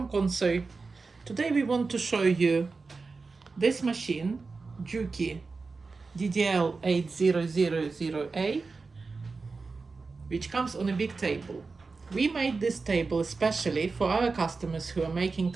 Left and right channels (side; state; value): left; quieter; 4.2 dB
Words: Konso. Today we want to show you this machine, Juki DDL-8000A, which comes on a big table. We made this table especially for our customers who are making